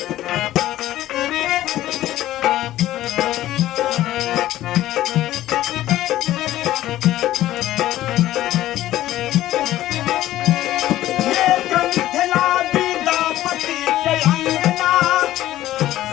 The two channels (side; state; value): right; quieter; 14.3 dB